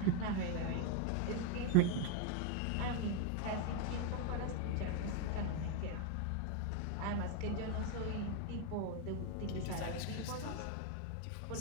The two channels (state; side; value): different; both; correlation 0.01